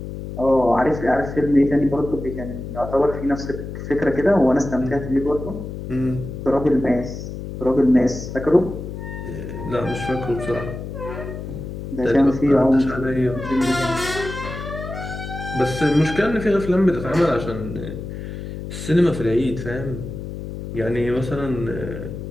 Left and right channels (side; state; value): left; noise; hum, 8 dB below the sound